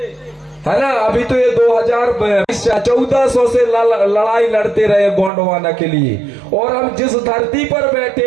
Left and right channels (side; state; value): left; drops out; at 5.3 s